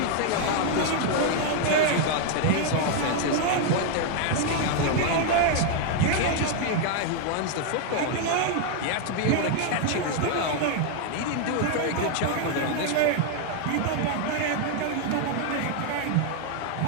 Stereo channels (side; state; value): both; different; correlation 0.00